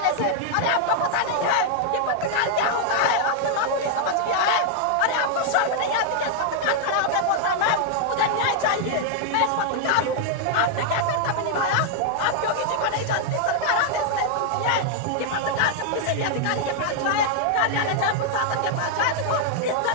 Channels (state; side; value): different; both; correlation -0.01